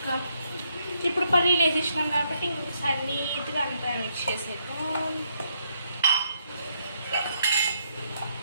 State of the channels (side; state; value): both; inverted; correlation -0.74